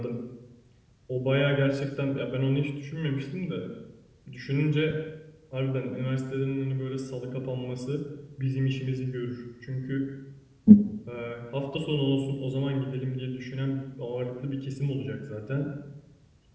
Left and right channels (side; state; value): both; identical; correlation 1.00